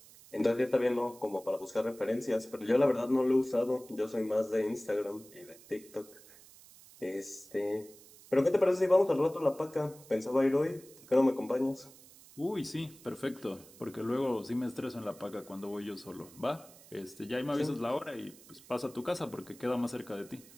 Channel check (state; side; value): noise; right; hiss, 22 dB below the sound